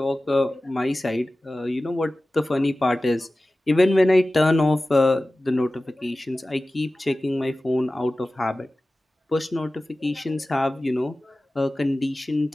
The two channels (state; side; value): normal; both; correlation 0.96